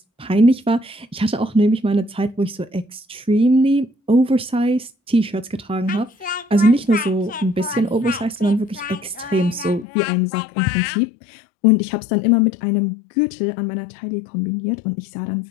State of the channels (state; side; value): drops out; right; at 9.9 s